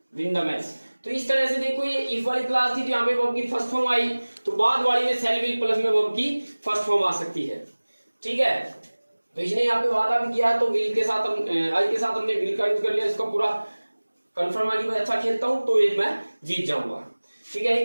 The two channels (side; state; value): both; inverted; correlation -1.00